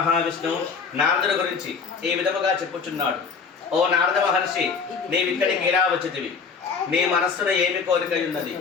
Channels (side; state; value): right; quieter; 5.6 dB